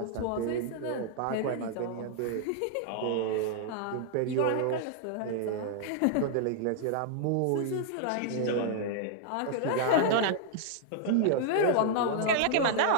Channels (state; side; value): different; both; correlation -0.01